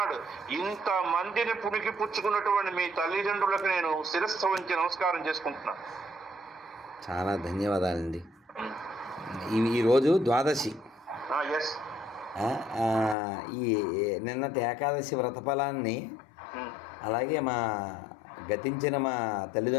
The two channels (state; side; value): drops out; right; at 13.2 s